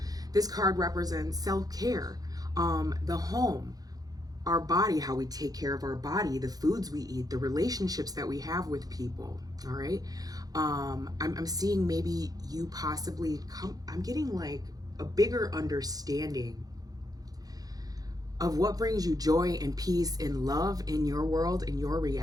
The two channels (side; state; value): left; late; 0.18 ms